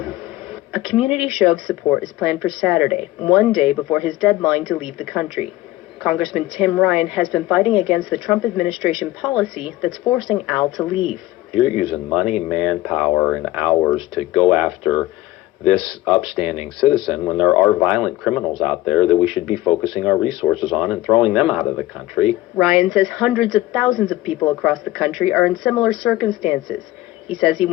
him. A community show of support is planned for Saturday, one day before his deadline to leave the country. Congressman Tim Ryan has been fighting against the Trump administration policy that's forcing Al to leave. You're using money, manpower, and hours to go after this upstanding citizen when there are violent criminals out there that we should be focusing our resources on and throwing them out of the country. Ryan says hundreds of thousands of people across the country are in similar circumstances. He says he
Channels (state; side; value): quieter; right; 16.7 dB